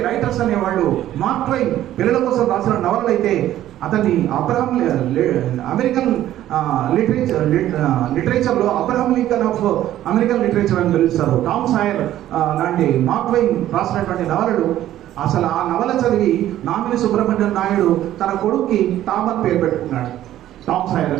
రైటర్స్ అనేవాళ్ళు. మార్క్ ట్వైన్ పిల్లల కోసం రాసిన నవలలు అయితే అతన్ని అమెరికన్ లిటరేచర్లో Abraham Lincoln of American literature అని పిలుస్తారు. టామ్ సాయర్ లాంటి మార్క్ ట్వైన్ రాసినటువంటి నవలలు, అసలు ఆ నవల చదివి నామిని సుబ్రహ్మణ్యం నాయుడు తన కొడుక్కి టామ్ అని పేరు పెట్టుకున్నాడు, టామ్ సాయర్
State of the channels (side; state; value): left; quieter; 13.0 dB